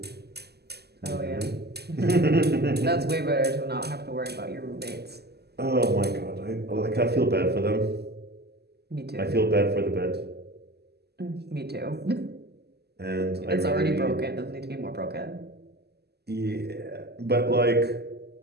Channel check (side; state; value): left; late; 0.47 ms